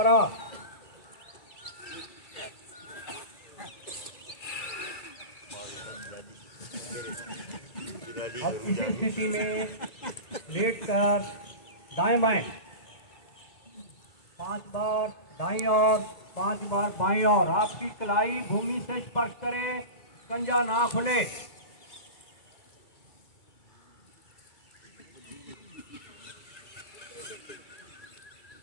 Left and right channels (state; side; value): late; right; 1.9 ms